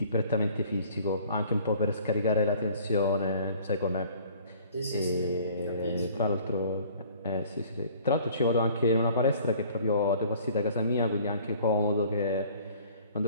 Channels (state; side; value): inverted; both; correlation -0.53